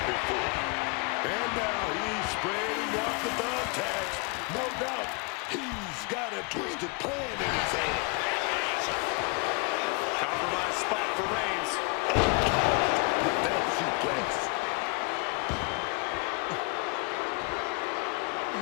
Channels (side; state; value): right; quieter; 31.0 dB